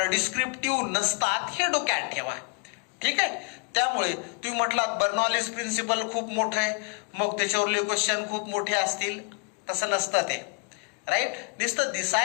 डिस्क्रिप्टिव्ह नसतात, हे डोक्यात ठेवा. ठीक आहे, त्यामुळे तुम्ही म्हटलात बर्नॉलीज प्रिन्सिपल खूप मोठं आहे, मग त्याच्यावरले क्वेश्चन खूप मोठे असतील, तसं नसतं ते. राईट, नुसतं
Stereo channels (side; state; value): right; quieter; 34.2 dB